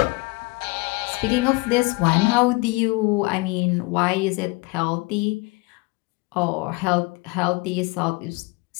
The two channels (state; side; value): quieter; right; 25.4 dB